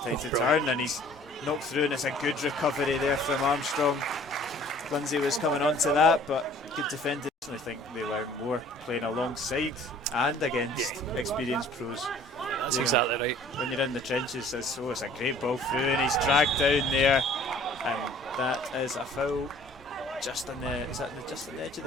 to turn, and he's knocked through, and it's a good recovery there from Armstrong. Lindsay was coming on to that, but good defending. I think they learn more playing alongside and against experienced pros. That's exactly right. When you're in the trenches, it's a great ball through, and he's dragged down there, and that is a foul just on the just on the edge of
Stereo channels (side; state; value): both; normal; correlation 0.52